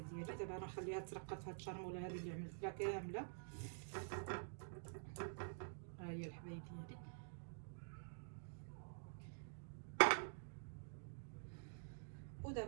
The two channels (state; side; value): silent; left; digital silence